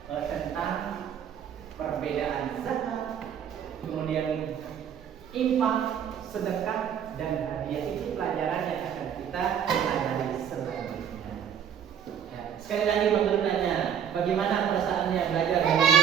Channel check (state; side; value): quieter; left; 8.5 dB